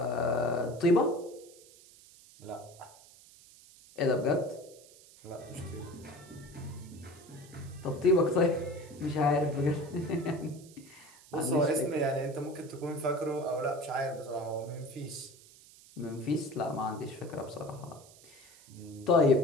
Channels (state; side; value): noise; right; hiss, 23 dB below the sound